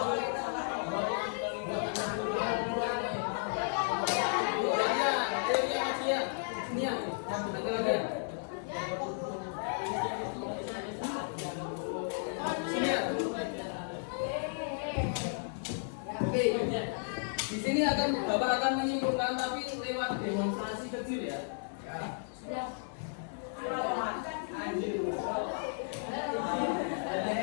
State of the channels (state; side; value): silent; right; digital silence